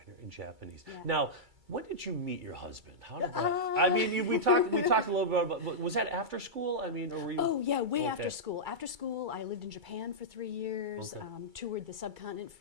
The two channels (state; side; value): late; left; 2.3 ms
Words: in Japanese. Yeah. Now, when did you meet your husband? How did that? I mean, we talked a little bit about. Was that after school? I mean, or were you? Oh yeah, way after school. After school, I lived in Japan for 3 years. Toured the subcontinent